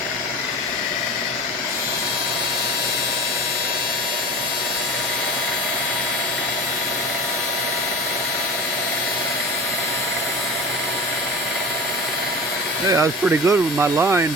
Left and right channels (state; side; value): normal; both; correlation 0.34